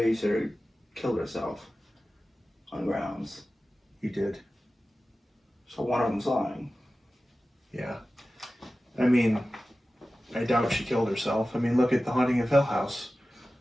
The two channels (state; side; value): normal; both; correlation 0.95